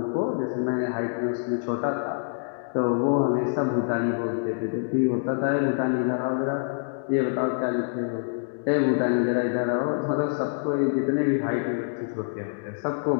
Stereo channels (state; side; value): silent; right; digital silence